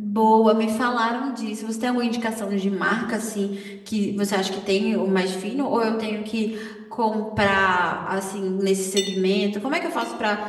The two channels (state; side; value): identical; both; correlation 1.00